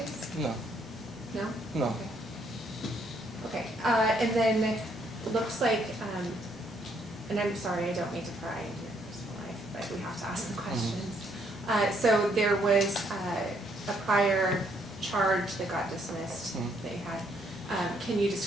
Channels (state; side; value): normal; both; correlation 0.70